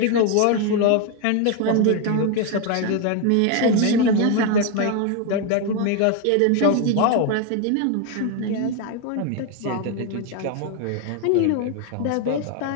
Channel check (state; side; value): different; both; correlation 0.01